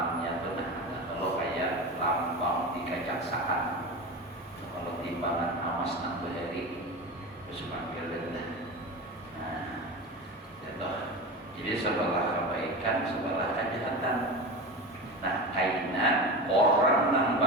benar. Kalau kayak lambang di kejaksaan, kalau timbangan amas nang beheri semakin rendah. Nah, jadi sebelah kebaikan, sebelah kejahatan. Nah, kaina orang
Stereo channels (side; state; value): both; normal; correlation 0.26